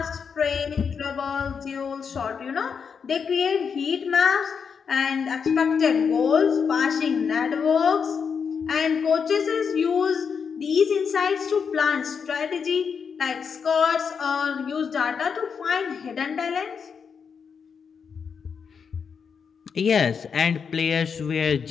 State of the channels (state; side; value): quieter; right; 6.3 dB